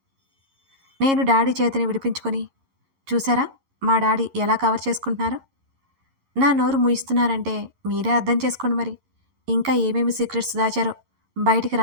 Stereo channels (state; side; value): late; left; 11 ms